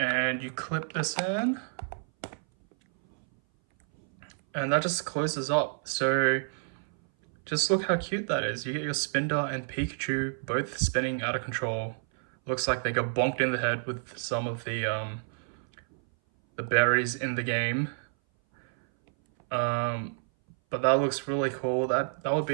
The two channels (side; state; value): left; silent; 58 dB below the other